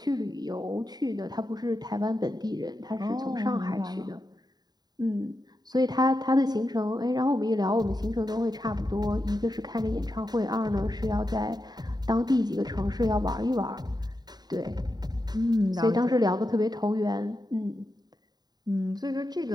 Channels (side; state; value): left; late; 0.20 ms